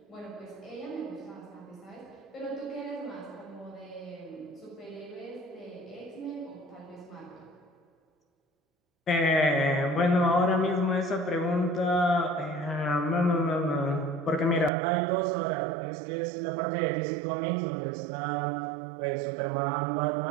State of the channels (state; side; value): drops out; left; at 14.7 s